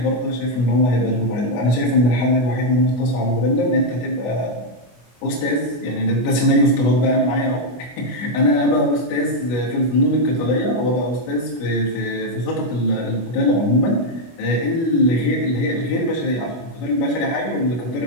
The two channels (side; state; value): right; late; 25 ms